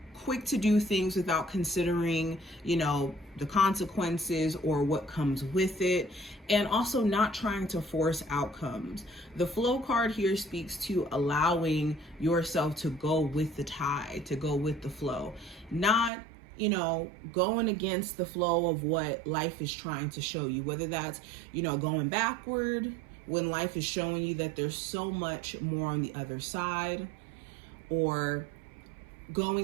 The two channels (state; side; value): drops out; left; at 16.1 s